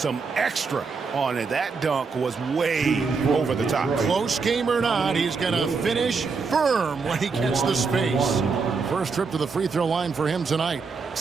extra on it. That dunk was way over the top. Close game or not, he's going to finish firm when he gets the space. First trip to the free throw line for him tonight.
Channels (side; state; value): left; quieter; 4.9 dB